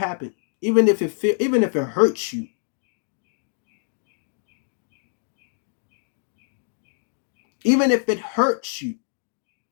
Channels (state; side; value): silent; right; digital silence